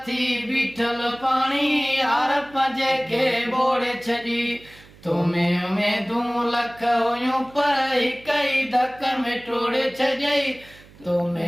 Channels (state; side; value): noise; right; hum, 24 dB below the sound